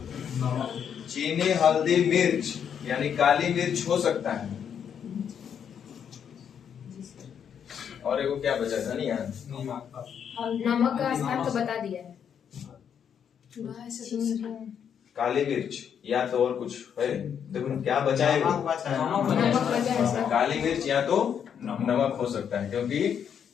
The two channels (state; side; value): quieter; right; 8.1 dB